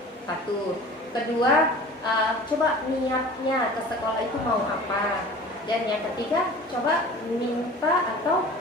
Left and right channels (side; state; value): both; normal; correlation 0.41